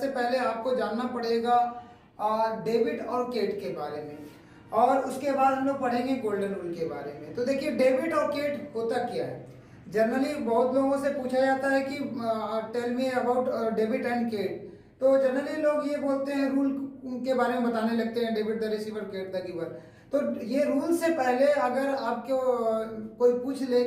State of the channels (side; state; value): both; identical; correlation 1.00